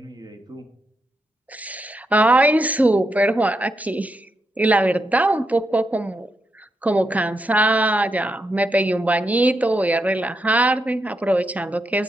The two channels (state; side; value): normal; both; correlation 0.83